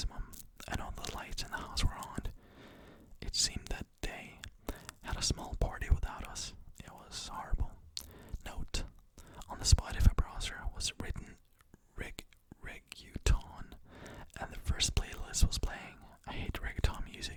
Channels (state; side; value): identical; both; correlation 1.00